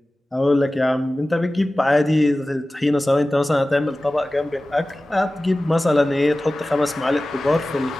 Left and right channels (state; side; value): normal; both; correlation 0.97